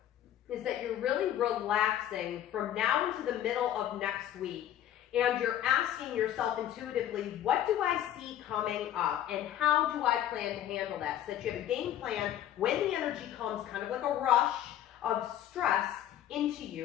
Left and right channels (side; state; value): right; quieter; 11.5 dB